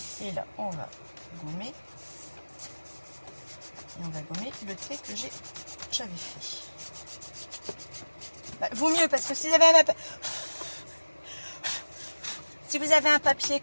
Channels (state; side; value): inverted; both; correlation -1.00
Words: Et là, on va gommer. Et on va gommer le trait que j'avais fait. Bah, vaut mieux, parce que si vous avez un papier